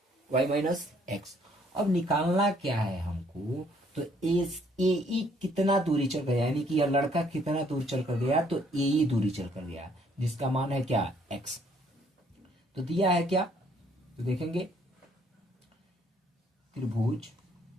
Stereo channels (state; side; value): normal; both; correlation 0.65